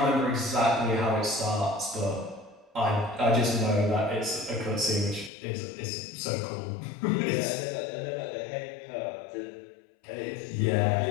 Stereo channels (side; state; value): right; drops out; at 5.3 s